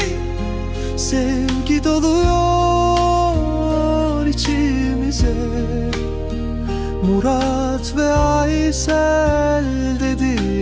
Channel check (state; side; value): identical; both; correlation 1.00